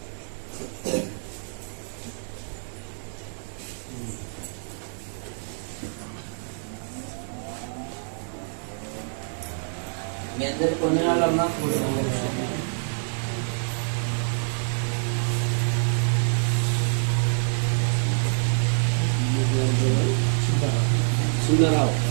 మీ అందరి కొన్ని వాళ్ళమ్మా సుందరరావు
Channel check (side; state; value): left; silent; digital silence